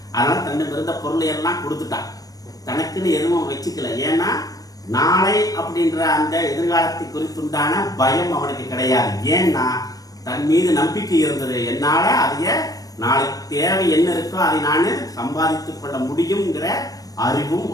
அதனால தன்னுக்கு இருந்த பொருளை எல்லாம் கொடுத்துட்டான், தனக்குன்னு எதுவும் வச்சுக்கல. ஏன்னா நாளை அப்படின்ற அந்த எதிர்காலத்தை குறித்துண்டான பயம் அவனுக்கு கிடையாது. ஏன்னா தன் மீது நம்பிக்கை இருந்தது. என்னால அதைய நாளைக்கு தேவை என்ன இருக்கோ அதை நான் சம்பாதித்துக் கொள்ள முடியுங்கிற அறிவும்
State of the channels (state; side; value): late; right; 0.18 ms